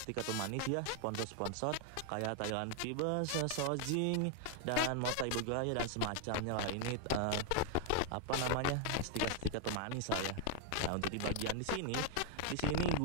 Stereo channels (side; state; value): both; different; correlation 0.00